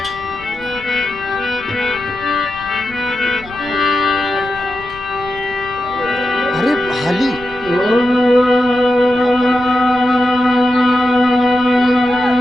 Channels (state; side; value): noise; left; rumble, 19 dB below the sound